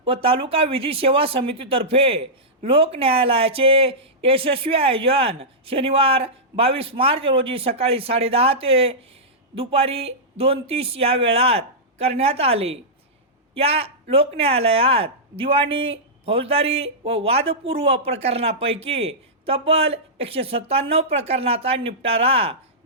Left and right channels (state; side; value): normal; both; correlation -0.13